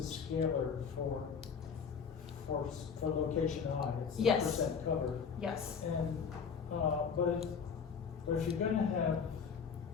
a scalar for location I. It's the Yes. percent cover. yes. And but if you're gonna have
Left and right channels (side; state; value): right; quieter; 6.2 dB